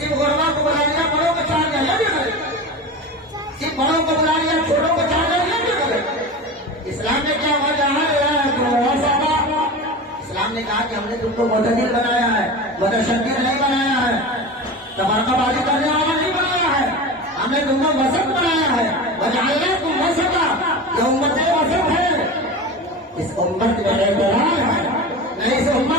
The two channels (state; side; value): normal; both; correlation 0.29